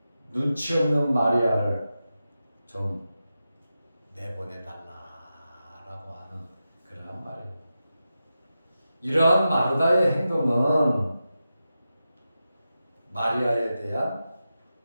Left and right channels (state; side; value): inverted; both; correlation -0.91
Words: 눈치 없는 마리아를 좀 내보내달라라고 하는 그러한 말이에요. 이러한 마르다의 행동은 마리아에 대한